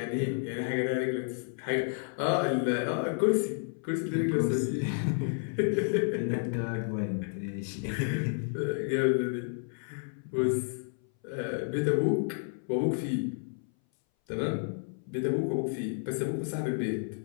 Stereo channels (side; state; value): right; silent; 57 dB below the other